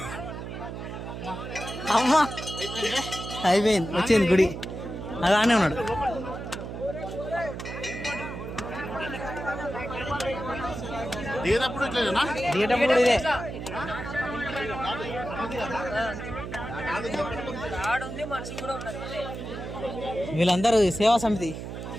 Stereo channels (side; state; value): right; noise; hum, 8 dB below the sound